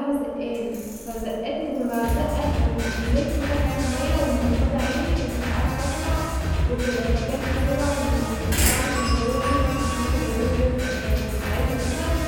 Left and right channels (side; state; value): both; identical; correlation 1.00